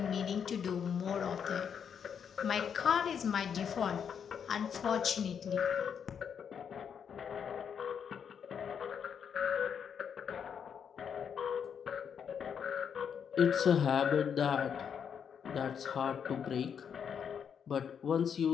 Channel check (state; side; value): quieter; right; 7.5 dB